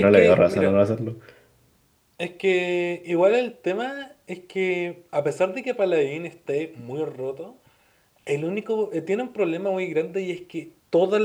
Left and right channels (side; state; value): both; identical; correlation 1.00